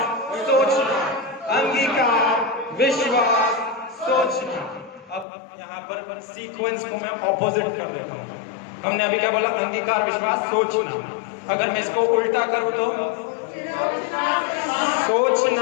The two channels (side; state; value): right; drops out; at 5.2 s